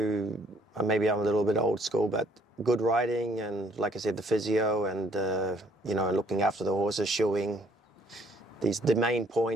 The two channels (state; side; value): normal; both; correlation 0.63